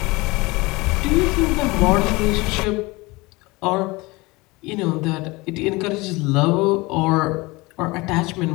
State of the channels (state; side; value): quieter; right; 23.3 dB